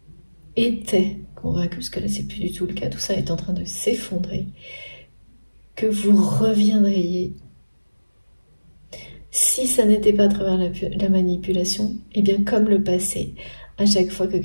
parce que là c'est plus du tout le cas, tout ça est en train de s'effondrer, que vous reviendriez, si ça n'était pas à travers la manipulation, et bien comme le passé, à chaque fois que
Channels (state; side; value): inverted; both; correlation -1.00